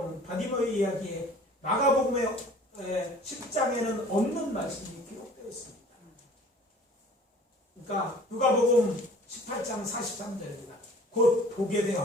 바디메오의 이야기에 마가복음의 10장에는 없는 말씀이 기록되어 있습니다. 그러니까 누가복음 18장 43절입니다. 곧 보게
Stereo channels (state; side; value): normal; both; correlation 0.49